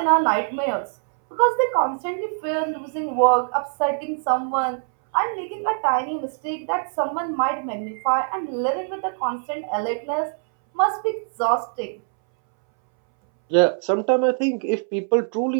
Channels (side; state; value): left; silent; 63 dB below the other